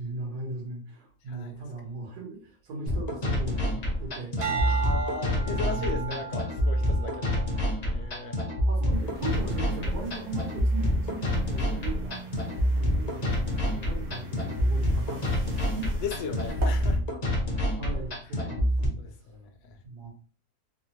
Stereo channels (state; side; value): normal; both; correlation 0.55